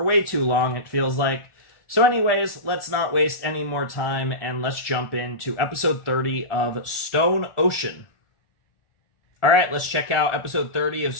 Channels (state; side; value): late; right; 1.4 ms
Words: way too long, it feels like. So anyways, let's not waste any more time, and let's jump into episode 30 of Stone Ocean. Alright, let's check out episode 30 of